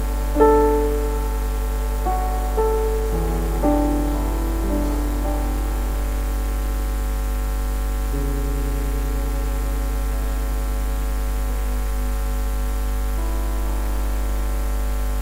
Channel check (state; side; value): identical; both; correlation 1.00